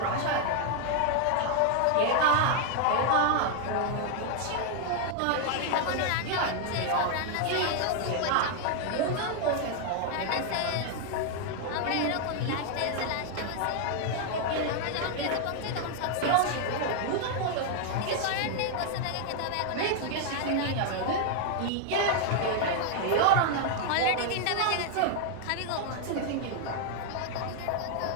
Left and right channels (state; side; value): different; both; correlation 0.00